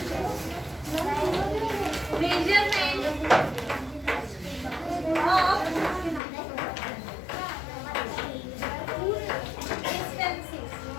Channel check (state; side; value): drops out; right; at 6.2 s